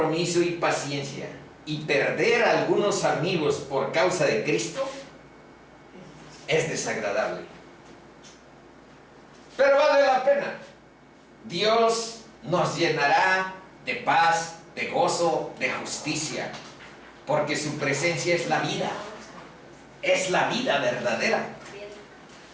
y paciencia. Y perder a algunos amigos por causa de Cristo es desagradable. Pero vale la pena. Dios nos llenará de paz, de gozo, de justicia, porque su presencia es la vida. Es la vida verdadera.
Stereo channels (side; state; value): both; identical; correlation 1.00